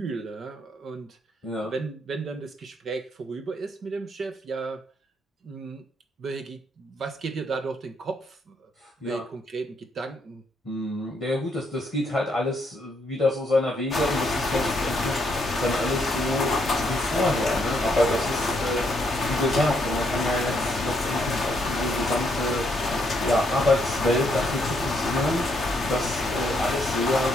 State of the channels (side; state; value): both; normal; correlation 0.74